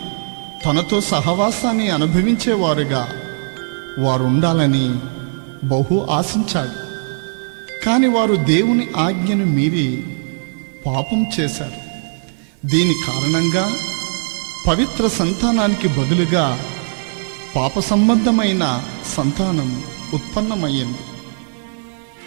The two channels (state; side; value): silent; left; digital silence